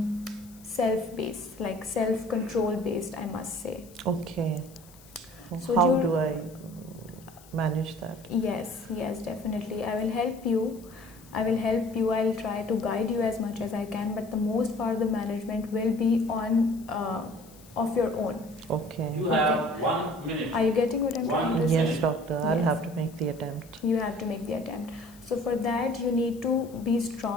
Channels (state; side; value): noise; left; hiss, 24 dB below the sound